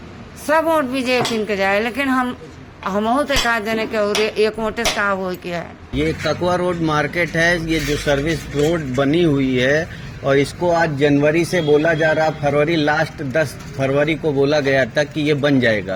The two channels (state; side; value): identical; both; correlation 1.00